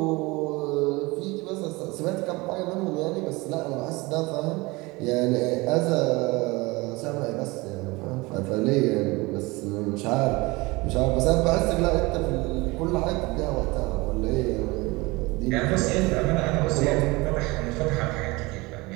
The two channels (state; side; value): quieter; left; 23.3 dB